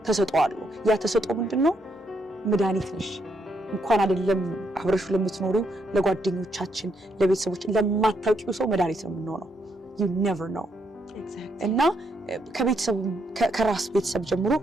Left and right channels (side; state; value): both; normal; correlation 0.76